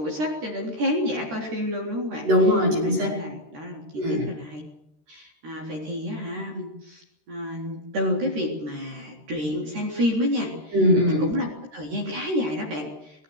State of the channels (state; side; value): late; left; 13 ms